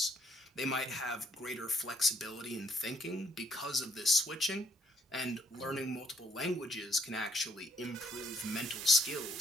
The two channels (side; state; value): both; normal; correlation 0.68